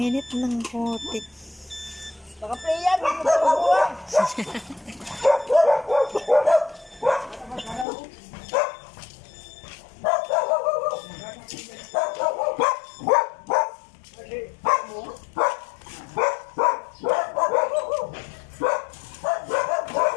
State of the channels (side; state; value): right; drops out; at 7.9 s